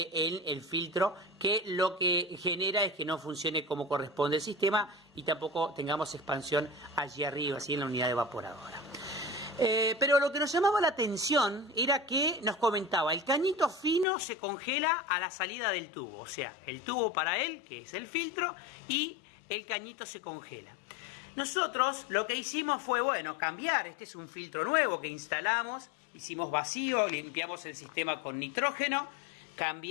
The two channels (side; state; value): right; drops out; at 14.1 s